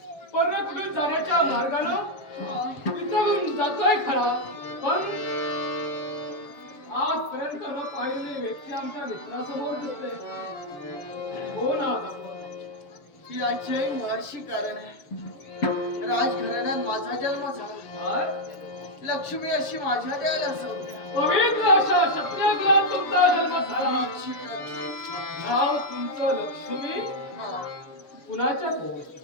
पण कुठून जाण्याच्या मार्गानं तिथून जातोय खरा, पण आजपर्यंत न पाहिलेली व्यक्ती आमच्या मित्रासमोर दिसते. कोण आहात आपण? याचे मुळाशी कारण आहे. राजघराण्यात माझा जन्म झाला. लक्ष्मी अशी माझ्या देवाला संज्ञा. पवित्र अशा क्षत्रिय कुलात तुमचा जन्म झाला. नाव तुमचं लक्ष्मी. कुणाच्या कोण?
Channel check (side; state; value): right; late; 7.1 ms